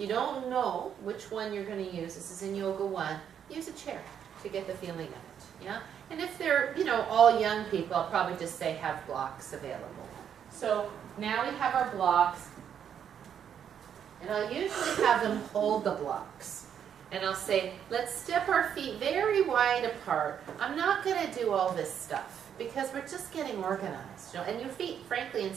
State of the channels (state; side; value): quieter; left; 8.6 dB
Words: don't know which one you're going to use, this is in Yoga 1, use a chair to get the feeling of it, yeah? And if they're, all young people, I'll probably just say have blocks available. So now we have our blocks, and I'll usually have them hold the blocks. And I'll say, let's step our feet very wide apart. I'm not going to do all this stuff because we're just getting organized. And your feet, frankly, in